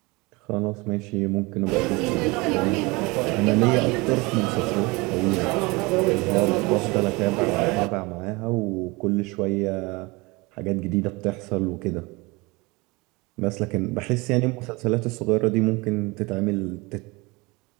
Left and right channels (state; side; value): quieter; left; 24.8 dB